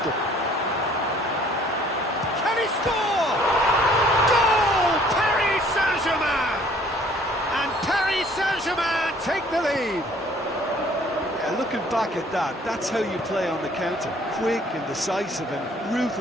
Can he score? Goal! Paris Saint-Germain! And Paris Saint-Germain take the lead. Yeah, looking back at that, that's how you play on the counter. Quick and decisive and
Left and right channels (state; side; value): normal; both; correlation 0.57